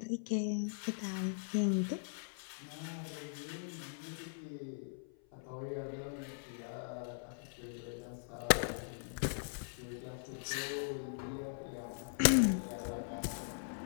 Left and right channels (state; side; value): silent; right; 51 dB below the other